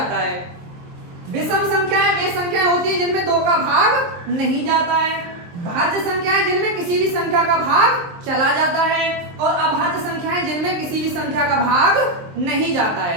है। विषम संख्याएं वे संख्याएं होती हैं जिनमें 2 का भाग नहीं जाता है। भाज्य संख्याएं जिनमें किसी भी संख्या का भाग चला जाता है, और अभाज्य संख्याएं जिनमें किसी भी संख्या का भाग नहीं जाता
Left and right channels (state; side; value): late; left; 23 ms